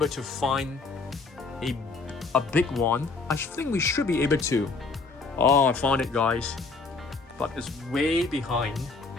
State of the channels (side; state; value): right; quieter; 4.1 dB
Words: to find a big one. I think we should be able to. Oh, I found it guys. But it's way behind.